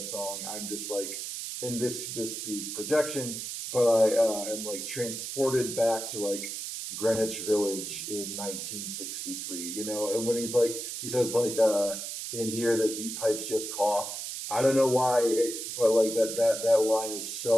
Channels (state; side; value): noise; right; hiss, 6 dB below the sound